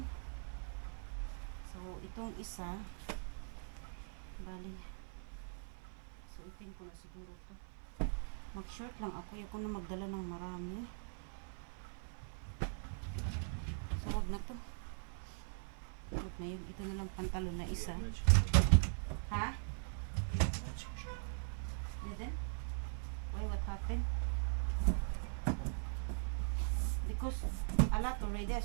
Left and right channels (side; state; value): left; silent; 50 dB below the other